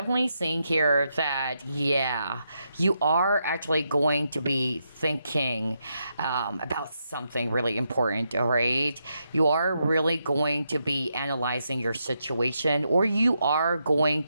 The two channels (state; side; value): inverted; both; correlation -0.82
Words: seeing here that, yeah, you are actually going to be thinking about something really important, all right? You are really going to be analyzing your situation, or you are going